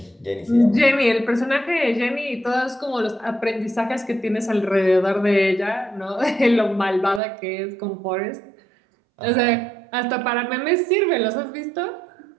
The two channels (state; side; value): drops out; left; at 7.2 s